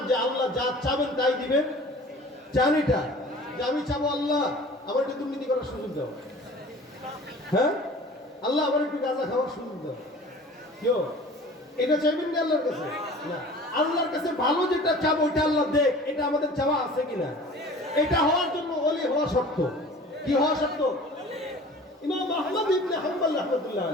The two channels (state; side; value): normal; both; correlation 0.44